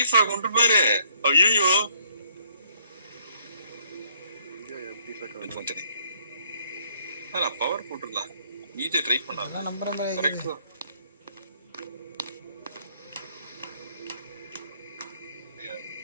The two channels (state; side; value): inverted; both; correlation -0.66